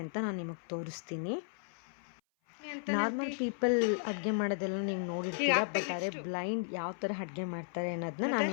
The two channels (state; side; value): silent; right; 55 dB below the other